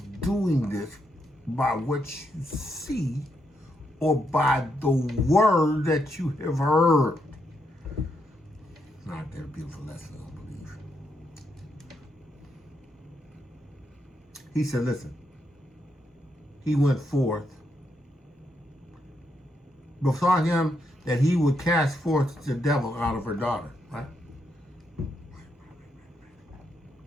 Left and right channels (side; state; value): both; normal; correlation 0.80